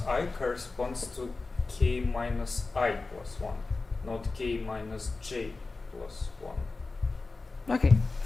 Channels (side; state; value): right; quieter; 3.7 dB